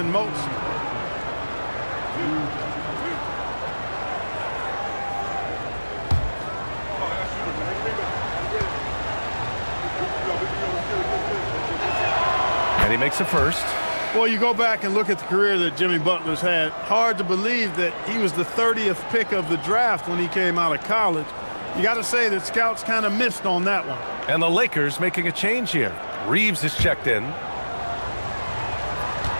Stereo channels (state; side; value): inverted; both; correlation -1.00